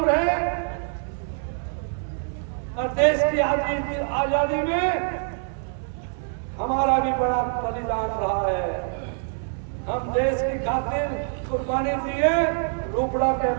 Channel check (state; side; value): silent; left; 61 dB below the other